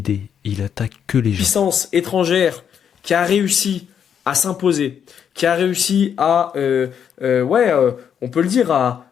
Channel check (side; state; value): right; quieter; 8.2 dB